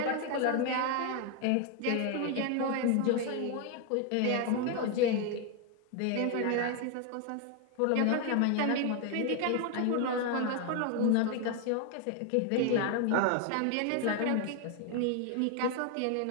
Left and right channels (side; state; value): both; different; correlation 0.01